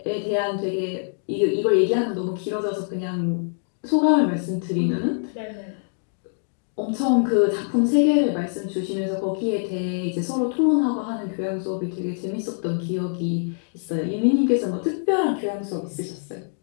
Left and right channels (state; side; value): silent; right; digital silence